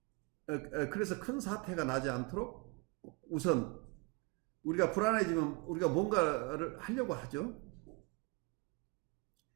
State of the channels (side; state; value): left; quieter; 29.1 dB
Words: 그래서 큰 사태가 나지 않도록 우선 우리가 불안해지면 우리가 뭔가를 하려고 하죠.